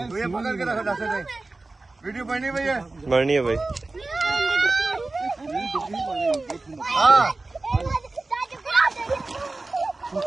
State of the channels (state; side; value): quieter; left; 3.3 dB